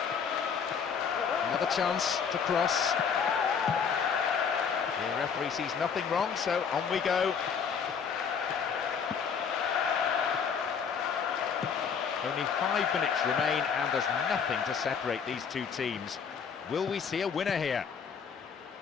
Another chance to cross. The referee sees nothing wrong, so on we go. Only 5 minutes remain and there's nothing to separate these two teams. Will we see a winner here?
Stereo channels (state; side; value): quieter; right; 6.6 dB